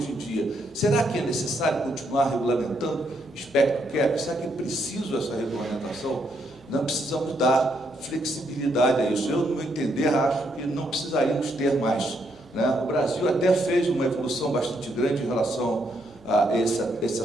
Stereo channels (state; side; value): noise; left; hum, 28 dB below the sound